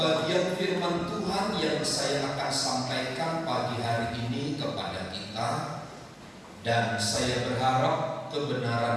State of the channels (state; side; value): identical; both; correlation 1.00